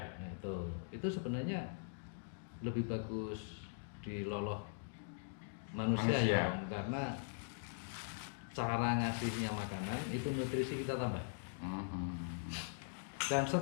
Nah, itu sebenarnya lebih bagus di loloh manusia. Ya karena cara ngasihnya makanan itu nutrisi kita tambah. Dan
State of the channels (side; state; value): right; silent; digital silence